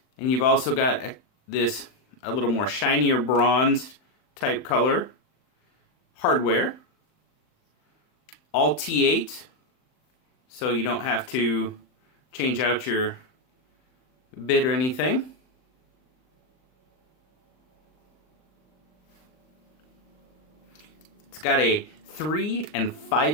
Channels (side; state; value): right; late; 39 ms